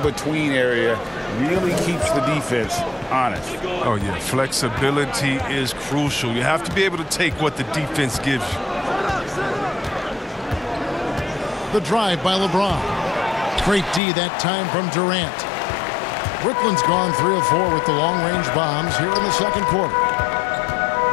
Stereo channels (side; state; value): right; drops out; at 14.0 s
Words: area, really keeps the defense honest. Oh, yeah. Flexibility is crucial. You have to be able to take what the defense gives you. The drive by LeBron. Great D that time from Durant. Brooklyn's gone 3 of 4 with the long-range bombs here in the second quarter.